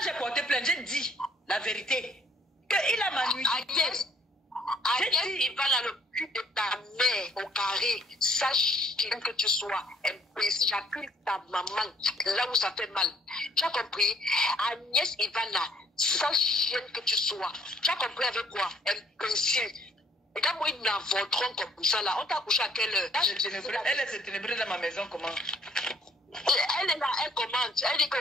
j'ai porté plainte, j'ai dit la vérité. Qu'il a ma nuit. Agnès, il va dans le cul de ta mère au carré. Sache que tu sois imbécile. J'accuse ta maman là où ça fait mal. Tu as compris? Agnès Ivana, sache que tu sois. Tu as compris avec quoi? Imbécile. Et quand moi, ils n'avorteront comme ça là, on t'a couché à quelle heure? Elle est ténébreuse dans ma maison, comment? Elle est là, elle commente. Elle dit que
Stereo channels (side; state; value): both; normal; correlation 0.62